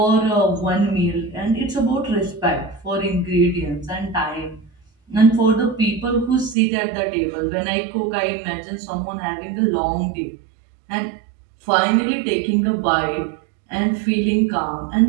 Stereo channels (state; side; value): drops out; left; at 6.6 s